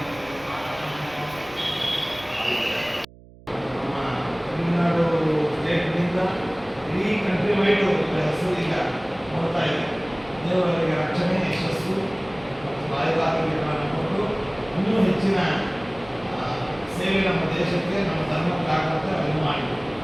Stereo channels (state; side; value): noise; right; hum, 22 dB below the sound